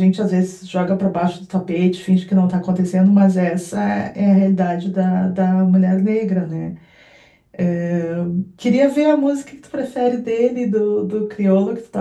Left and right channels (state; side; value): identical; both; correlation 1.00